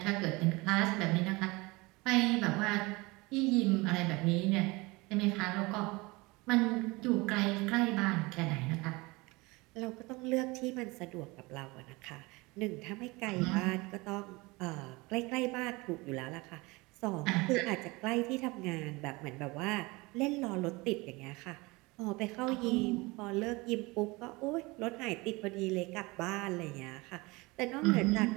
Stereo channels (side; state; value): left; quieter; 23.9 dB